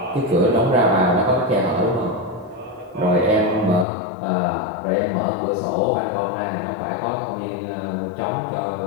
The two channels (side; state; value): right; drops out; at 3.9 s